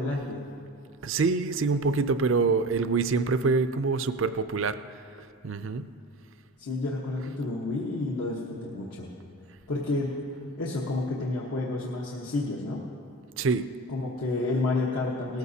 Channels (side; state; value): both; normal; correlation 0.33